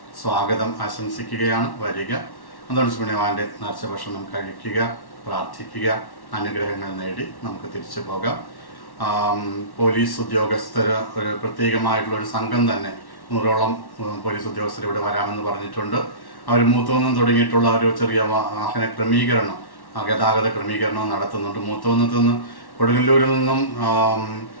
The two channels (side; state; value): right; late; 1.1 ms